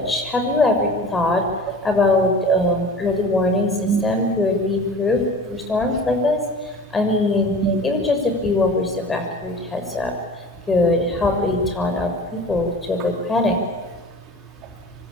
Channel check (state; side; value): normal; both; correlation 0.40